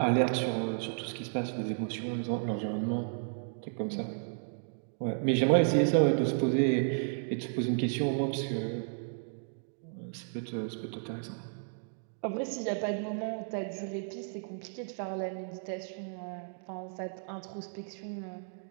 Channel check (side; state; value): left; silent; digital silence